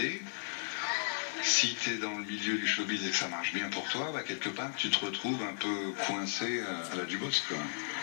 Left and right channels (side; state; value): right; silent; digital silence